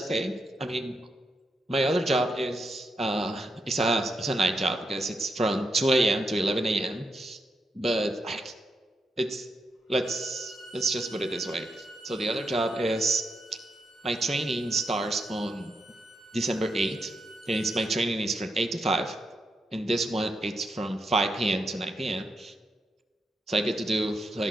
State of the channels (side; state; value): both; normal; correlation 0.83